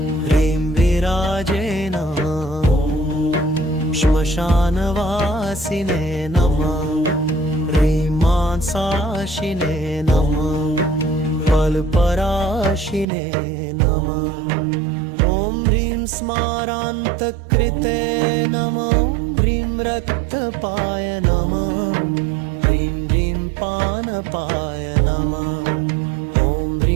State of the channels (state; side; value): drops out; left; at 13.1 s